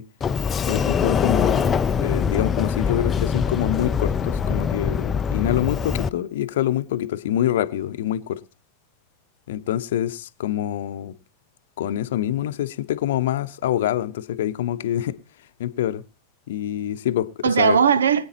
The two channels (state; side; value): quieter; right; 5.1 dB